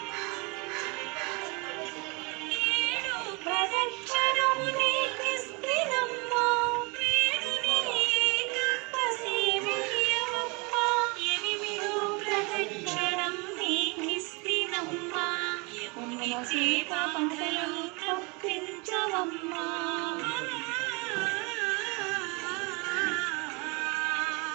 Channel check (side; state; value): left; quieter; 29.4 dB